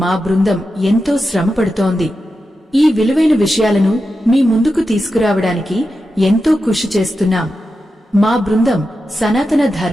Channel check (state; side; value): normal; both; correlation 0.90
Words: మా బృందం ఎంతో శ్రమపడుతోంది. ఈ విలువైన విషయాలను మీ ముందుకు తీసుకురావడానికి ఎంతో కృషి చేస్తున్నాం. మా బృందం సనాతన